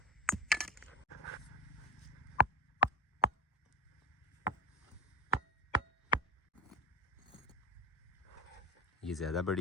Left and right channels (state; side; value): normal; both; correlation 0.20